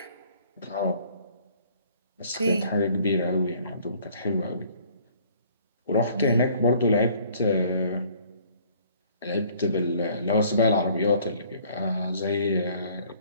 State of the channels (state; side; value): inverted; both; correlation -0.57